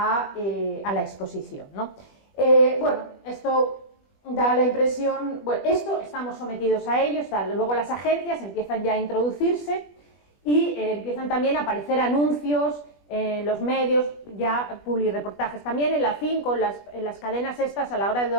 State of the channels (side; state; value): right; late; 20 ms